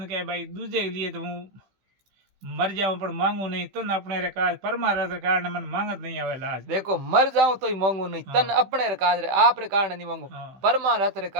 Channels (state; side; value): late; left; 16 ms